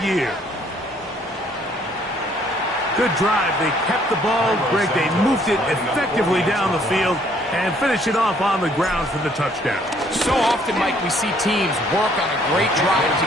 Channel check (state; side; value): normal; both; correlation 0.63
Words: year. Good drive. They kept the ball. Greg, they moved it effectively down the field and finish it off on the ground for the touchdown. So often, Mike, we see teams work on a great drive to